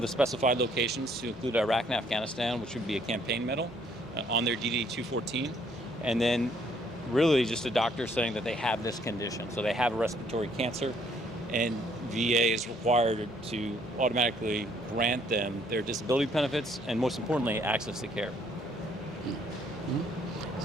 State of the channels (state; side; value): normal; both; correlation 0.65